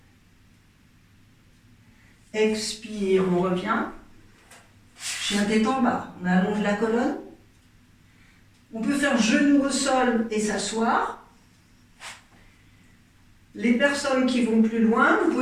Expire, on revient. Chien tête en bas, on allonge la colonne. On peut faire genou au sol et s'asseoir. Les personnes qui vont plus loin, vous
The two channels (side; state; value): both; identical; correlation 1.00